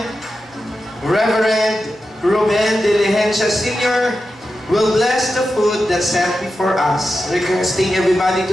Reverend Ruben De Ligencia Sr. will bless the food that's set before us, requesting everybody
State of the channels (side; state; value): both; normal; correlation 0.91